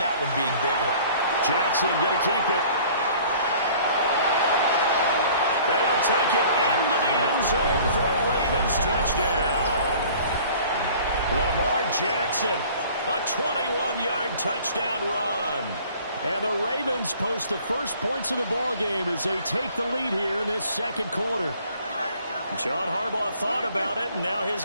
one being bigger. Jackson going to keep it. They'll take it into the end zone for a Ravens touchdown. Lamar Jackson, a 21-yard touchdown run. And the Ravens post the first points of the ballgame as they take the lead here in this second quarter. John Harbaugh thought about it, and now his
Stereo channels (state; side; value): inverted; both; correlation -0.51